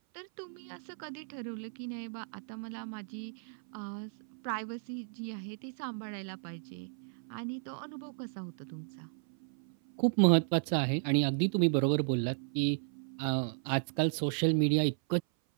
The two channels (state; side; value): silent; left; 55 dB below the other